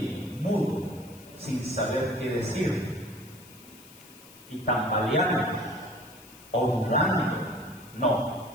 mudo, sin saber qué decir, y tambaleando o dudando, no,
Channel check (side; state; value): left; noise; hiss, 21 dB below the sound